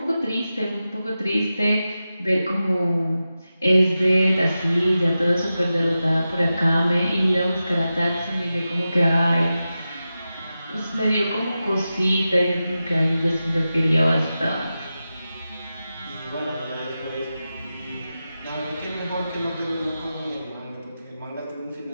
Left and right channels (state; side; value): inverted; both; correlation -0.92